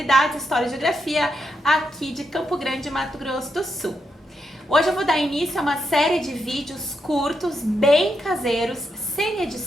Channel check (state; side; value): normal; both; correlation 0.82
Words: História e Geografia aqui de Campo Grande, Mato Grosso do Sul. Hoje eu vou dar início a uma série de vídeos curtos, bem caseiros, sem